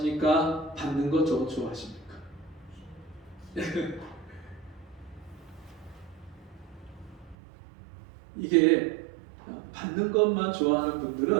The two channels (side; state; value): left; drops out; at 7.4 s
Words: 받는 거 더 좋아하십니까? 이게 받는 것만 좋아하는